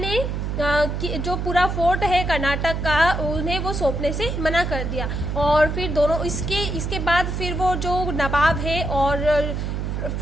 जो पूरा फोर्ट है कर्नाटक का, उन्हें वो सौंपने से मना कर दिया। और फिर दोनों इसके बाद फिर वो जो नवाब है और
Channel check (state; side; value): noise; right; hum, 2 dB below the sound